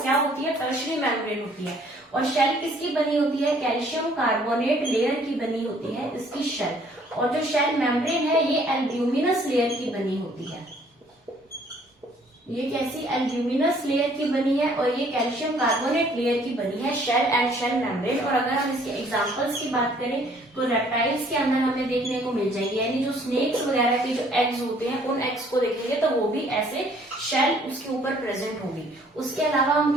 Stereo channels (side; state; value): both; normal; correlation 0.60